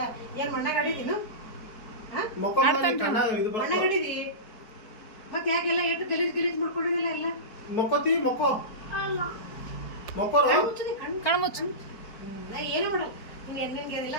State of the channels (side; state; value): right; late; 4.4 ms